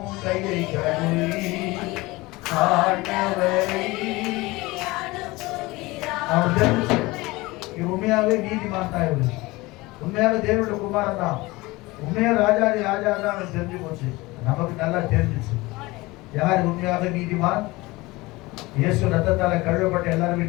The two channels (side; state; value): right; quieter; 21.5 dB